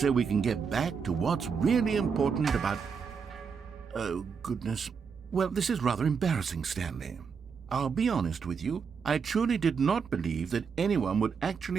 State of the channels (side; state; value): left; quieter; 6.1 dB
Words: we can get back to what's really important about... Oh, goodness. Well, this is rather embarrassing, Stanley. I'll be honest with you. I truly did not believe that anyone would